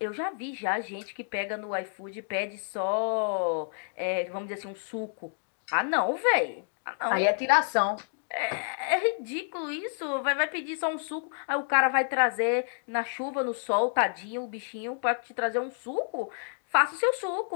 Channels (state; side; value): silent; right; digital silence